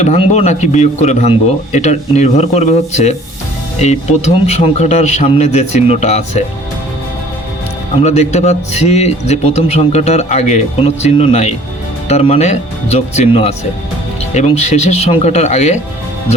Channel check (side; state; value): both; normal; correlation 0.52